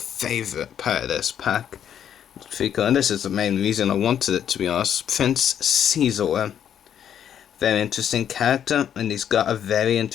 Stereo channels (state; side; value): quieter; right; 9.3 dB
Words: favourite part of this pack. And this is the main reason I wanted it, to be honest. Prince Xizor. Very interesting character, and he's got a very